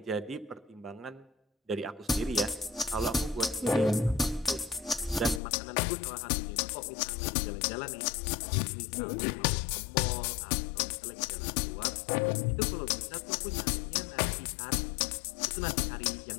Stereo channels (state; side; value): drops out; right; at 5.4 s